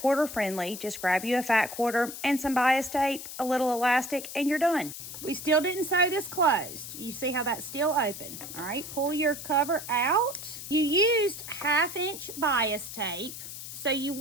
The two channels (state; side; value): noise; left; hiss, 10 dB below the sound